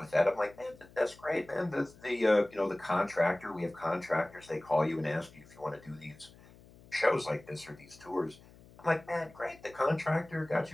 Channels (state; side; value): noise; left; hum, 23 dB below the sound